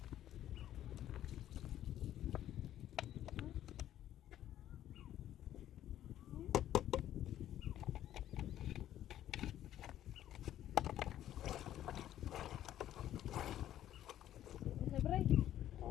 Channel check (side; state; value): right; quieter; 12.0 dB